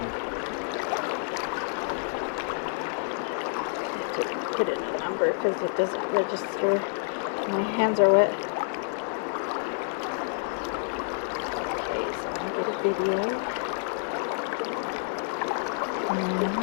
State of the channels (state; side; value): silent; right; digital silence